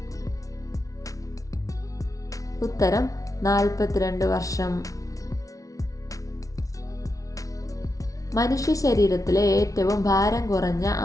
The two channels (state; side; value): late; right; 0.17 ms